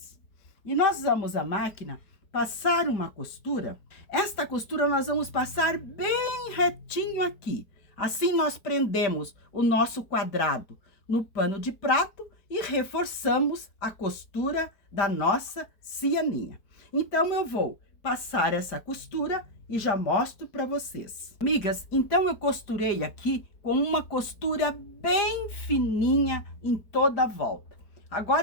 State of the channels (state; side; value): late; right; 4.7 ms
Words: E nós vamos à máquina passar uma costura. Esta costura nós vamos passar bem retinho aqui. Assim, nós prendemos o nosso quadrado no pano de prato e reforçamos a costura da nossa cianinha. Então, eu vou passar essa costura e já mostro para vocês. Amigas, então eu costurei aqui com uma costura bem fininha em toda a volta.